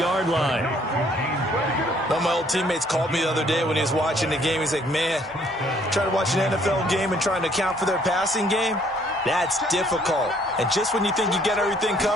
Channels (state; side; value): normal; both; correlation 0.63